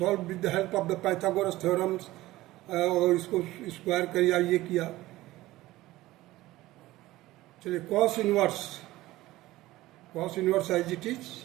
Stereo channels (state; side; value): quieter; left; 17.3 dB